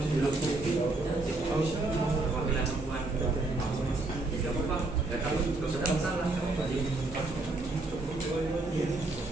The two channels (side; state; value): left; quieter; 3.1 dB